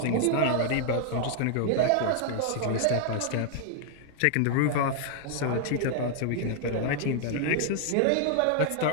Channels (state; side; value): different; both; correlation 0.00